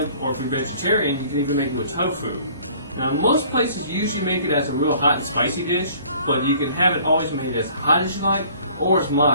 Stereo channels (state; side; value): inverted; both; correlation -0.54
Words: or if you're vegetarian, you can even make it with tofu. Now most places usually make it as a real hot and spicy dish, but you can have it always made as hot as you like, or as